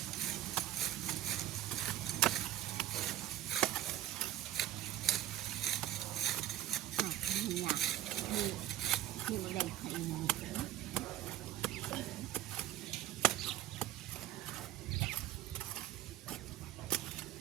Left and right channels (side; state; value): left; quieter; 13.2 dB